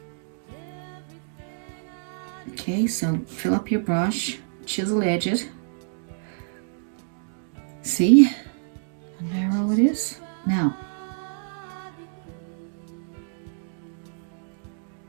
Okay, so fill up your brush, chisel edge it. See how narrow it is? Now,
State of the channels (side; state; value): left; silent; digital silence